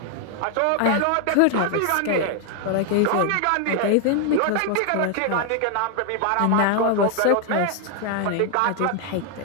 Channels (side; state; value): both; different; correlation 0.00